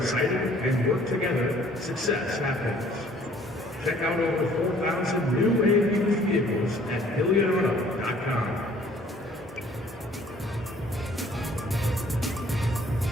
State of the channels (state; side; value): normal; both; correlation 0.57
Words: and work together, success happens. Check out over 4,000 new and used vehicles at HillionAuto.com.